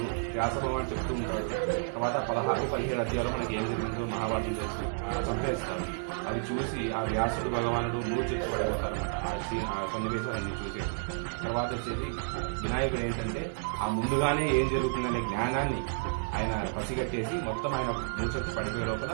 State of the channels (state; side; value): silent; left; digital silence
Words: వ్యాస భగవాన్ చెప్తూ ఉంటాడు. తర్వాత 16-17 అధ్యాయాలు మనకి ఏం జరిగిందో మహాభారతం చేసి చంపేస్తారు. అవి చూసి ఆ వ్యాసుడు భగవానుడు మూర్చిచ్చి పడిపోతారన్నమాట. ఆ సన్నివేశాలన్నీ చూసి తర్వాత వచ్చేసి వినాయకుడు ఏంటంటే ఆ ముందుగానే ఏం జరుగుతుందనే జ్ఞానాన్ని ఆయన పసిగట్టేసి మొత్తం ఆయన మూర్చొచ్చి పడిపోయే లోపల